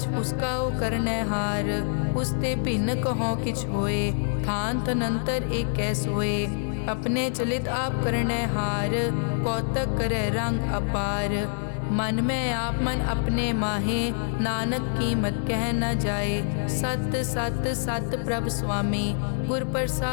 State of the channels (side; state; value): right; silent; 56 dB below the other